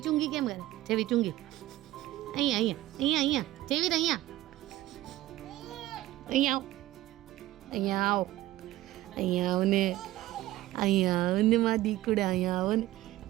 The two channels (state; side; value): quieter; left; 15.8 dB